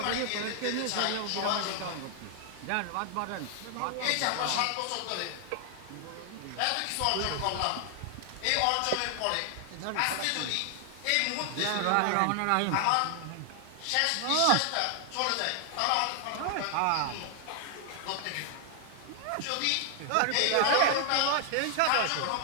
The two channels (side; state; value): both; different; correlation 0.00